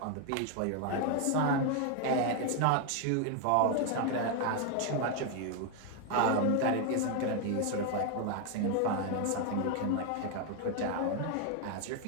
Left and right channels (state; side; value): different; both; correlation 0.00